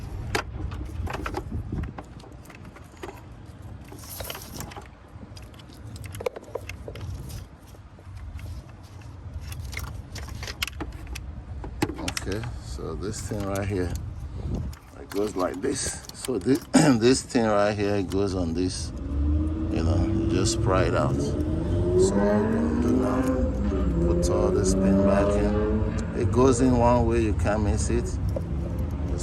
okay, so this thing right here, it goes like this. So this this thing right here, it goes on this, you know, you just pry it out. So what we're gonna do now, put all this pin back in. It goes in one way, you can't miss it.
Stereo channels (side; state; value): both; identical; correlation 1.00